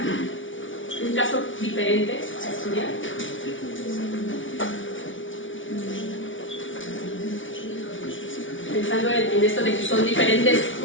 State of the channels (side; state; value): right; late; 0.56 ms